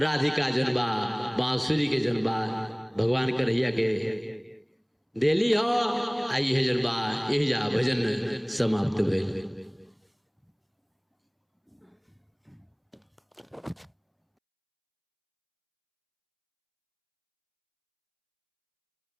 जनबा बांसुरी के जनबा भगवान कन्हैया के देली हो। आई है जनबा यही जा भजन समाप्त भेल।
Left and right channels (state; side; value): identical; both; correlation 1.00